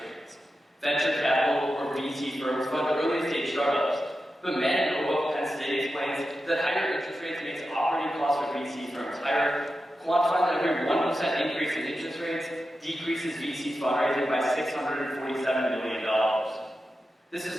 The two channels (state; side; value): normal; both; correlation 0.91